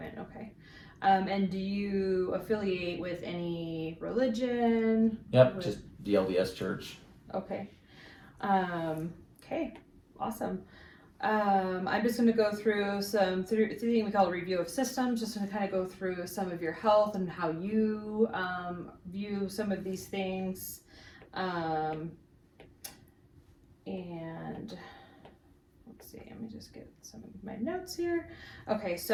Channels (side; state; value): both; identical; correlation 1.00